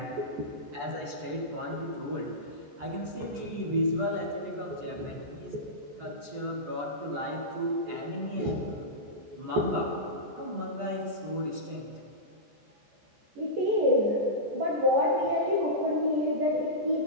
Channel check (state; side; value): late; left; 14 ms